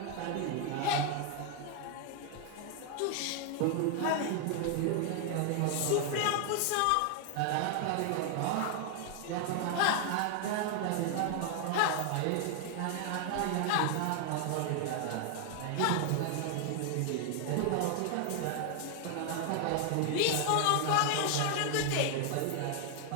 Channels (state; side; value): different; both; correlation 0.00